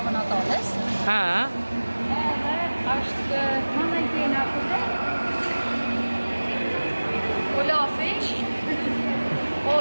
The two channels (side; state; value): both; inverted; correlation -1.00